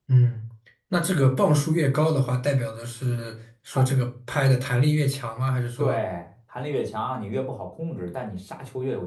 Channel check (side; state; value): both; identical; correlation 1.00